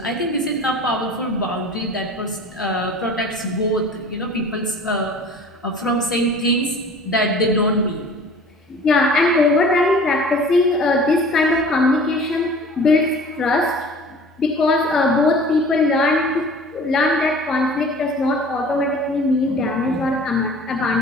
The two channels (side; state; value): both; normal; correlation 0.45